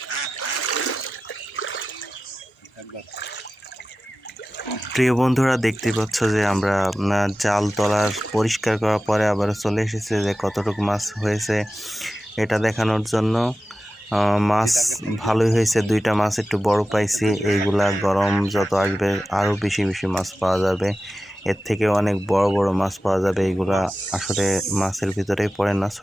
প্রিয় বন্ধুরা, দেখতে পাচ্ছ যে আমরা জাল তোলার পরিষ্কার করার পরে আবার চলে এসেছে যে কতটুকু মাছ হয়েছে এটা দেখানোর জন্য। মাছ ভালোই হয়েছে, 2টা মাছ একটু বড় পাইছি। এইগুলা গরম যত আসবে আরও বেশি বেশি মাছ পাওয়া যাবে, এর থেকে অনেক বড় বড় মাছ পাওয়া যাবে। এইগুলা আসলে মাছের ভিতরেই পড়ে না,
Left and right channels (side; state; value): both; normal; correlation 0.94